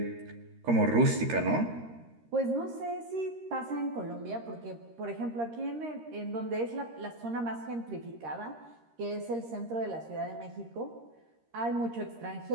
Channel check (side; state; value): left; late; 13 ms